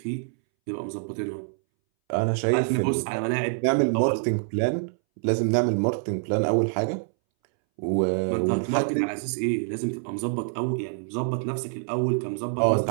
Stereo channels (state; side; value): silent; left; 61 dB below the other